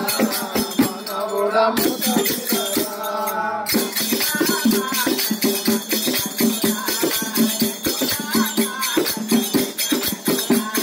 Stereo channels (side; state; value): both; identical; correlation 1.00